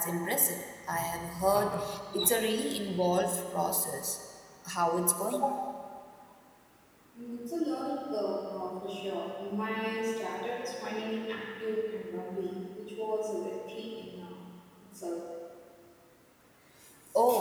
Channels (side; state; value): both; identical; correlation 1.00